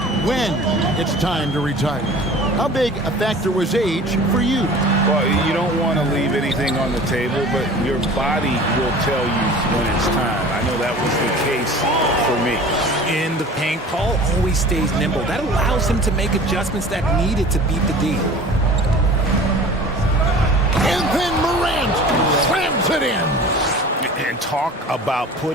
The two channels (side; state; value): both; normal; correlation 0.42